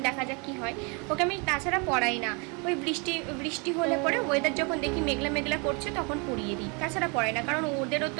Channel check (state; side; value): quieter; left; 32.4 dB